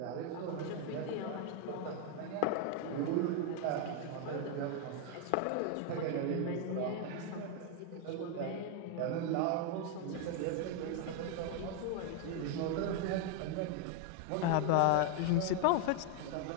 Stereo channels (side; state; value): both; different; correlation 0.01